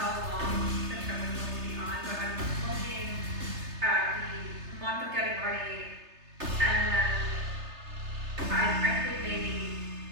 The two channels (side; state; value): left; late; 3.3 ms